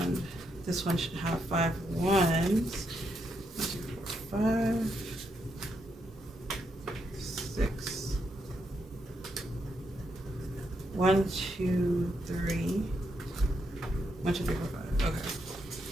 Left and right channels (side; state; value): both; normal; correlation 0.80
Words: this one should have 5 ones. 1, 2, 4, 5, 6. 1, 2, 3. 1, 2, 3, 4, 5. Okay.